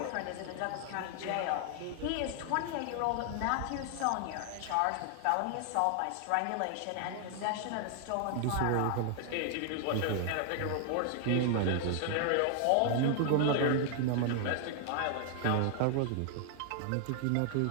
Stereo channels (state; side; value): different; both; correlation 0.00